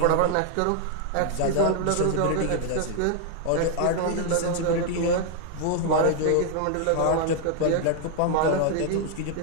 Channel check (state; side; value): different; both; correlation 0.00